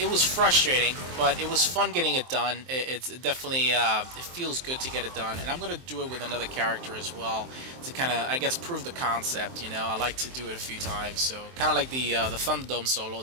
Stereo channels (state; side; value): late; left; 23 ms